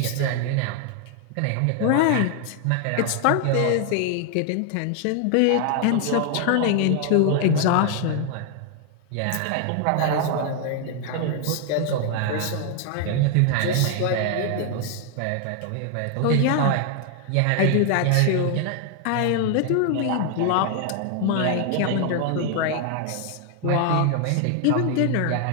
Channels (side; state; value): both; different; correlation 0.00